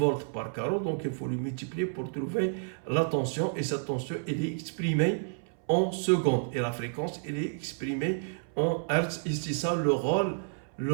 par carreau, donc il faut le multiplier pour trouver la tension, et cette tension elle est exprimée en secondes et la fréquence elle est exprimée en hertz. Et c'est ça le rôle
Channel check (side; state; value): left; silent; 58 dB below the other